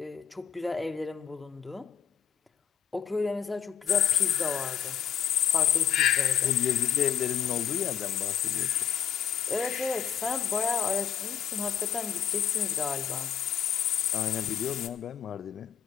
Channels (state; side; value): quieter; right; 8.7 dB